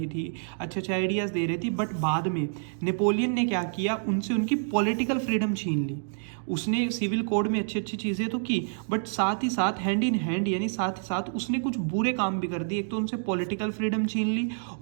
थी, अच्छे आइडियाज दे रही थी। बट बाद में नेपोलियन ने क्या किया, उनसे उनकी पॉलिटिकल फ्रीडम छीन ली। उसने सिविल कोड में अच्छी चीजें तो की, बट साथ ही साथ हैंड इन हैंड, यानी साथ ही साथ उसने कुछ बुरे काम भी कर दिए। एक तो उनसे पॉलिटिकल फ्रीडम छीन ली,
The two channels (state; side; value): silent; left; digital silence